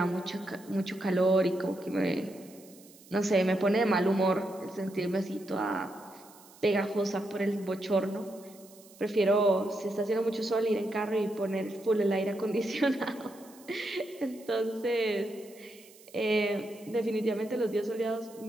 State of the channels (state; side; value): noise; right; hiss, 23 dB below the sound